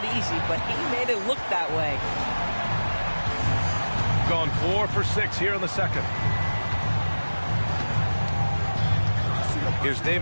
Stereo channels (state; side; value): inverted; both; correlation -1.00